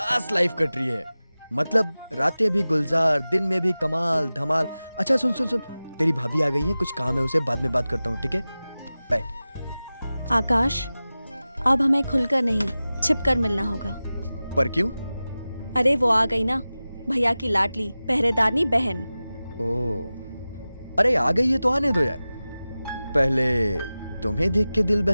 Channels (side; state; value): both; inverted; correlation -0.96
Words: लाइफ कट रही है। मतलब रातें भी गुलजार, दिन में भी कमाल धमाल। अच्छा सुन सुन सुन, तेरी भाभी आ गई है, कुछ काम है उसे, बाद में बात करता हूँ, ठीक है? बाय। आकाश, अब हमें खुलकर नहीं, छिपकर मिलना होगा। पर क्यों? अरे वो आ गई ना, भैया की लाडली पहरेदारनी बहन। ओ, अरे आ गई है तो आने दो यार। पहले तुम्हें देख के दिल